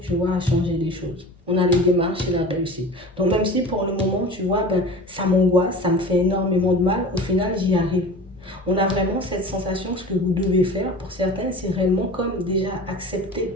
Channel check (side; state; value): both; normal; correlation 0.37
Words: tu vois, à changer les choses. On a les démarches et la réussite. Donc même si pour le moment, tu vois, ça m'angoisse, ça me fait énormément de mal, au final, j'y arrive. On a vraiment cette sensation, ce que vous devez faire, pour certains, c'est réellement comme déjà